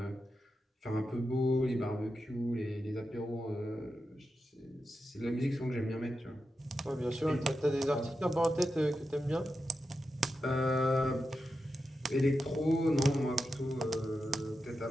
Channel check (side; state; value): both; normal; correlation 0.89